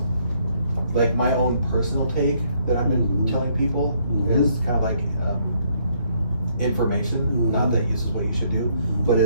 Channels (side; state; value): both; inverted; correlation -0.69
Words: like my own personal take that I've been telling people is kind of like information. Not that this is what you should do, but